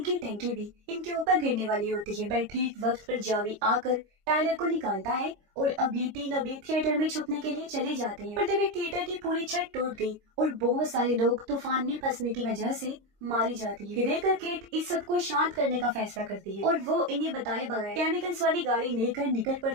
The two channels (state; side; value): late; left; 26 ms